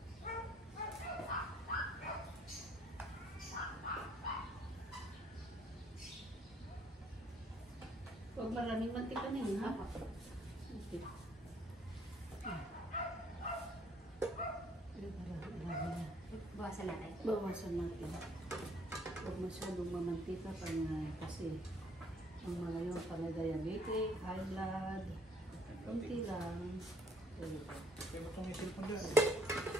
Huwag maraming mantika na yun, ha? Okay. Bawasan natin. Bawasan natin. Huwag masyadong mamantika kasi ang mga yun pala diabetic, high blood, konti lang. Kaya ba't may cellphone dyan?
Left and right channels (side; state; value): both; normal; correlation 0.62